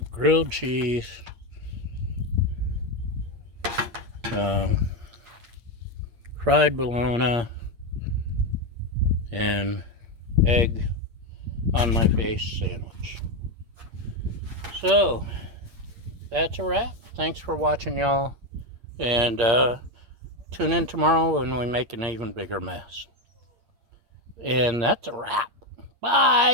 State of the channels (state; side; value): late; left; 8.6 ms